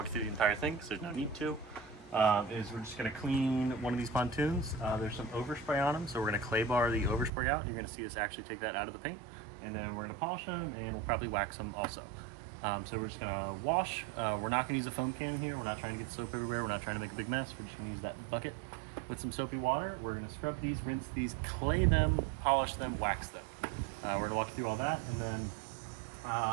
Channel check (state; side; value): drops out; left; at 7.3 s